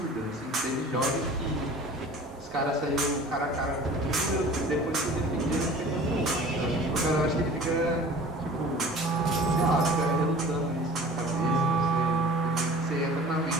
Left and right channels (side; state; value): both; normal; correlation 0.44